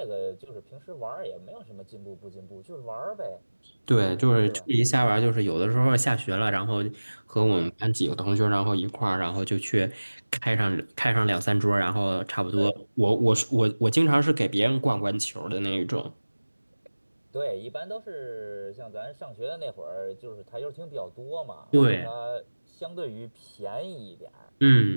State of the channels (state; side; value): inverted; both; correlation -1.00